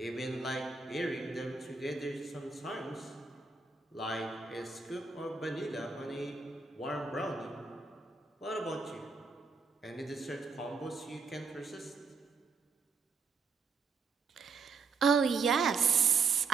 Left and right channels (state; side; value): quieter; left; 4.8 dB